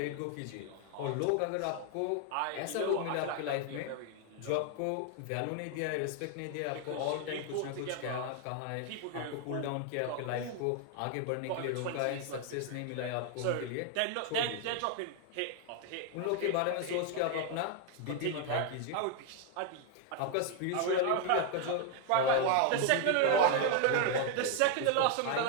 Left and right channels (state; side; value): different; both; correlation 0.01